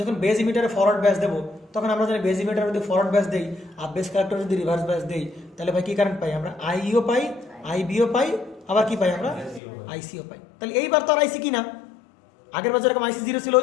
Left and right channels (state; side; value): drops out; right; at 9.6 s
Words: যখন বেজ ইমিটারে ফরওয়ার্ড ব্যাস দেবো, তখন আমরা জানি বেজ ইমিটারে যদি ফরওয়ার্ড ব্যাস দেই আর বেস কালেক্টর যদি রিভার্স ব্যাস দেই, তাহলে ভাই কি কারেন্ট পাই আমরা, আইইও পাই, আইবিও পাই, আবার কি পাই আমরা, আইসিও পাই। তাহলে এইবার তো আর আইসি কি না, আগের বছর এরকম আইসি 0 ছিল